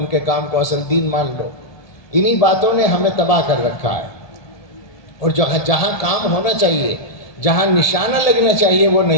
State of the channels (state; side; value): late; right; 1.8 ms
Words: کے کام کو اصل دین مان لو۔ انہی باتوں نے ہمیں تباہ کر رکھا ہے، اور جہاں کام ہونا چاہیے، جہاں نشانہ لگنا چاہیے وہ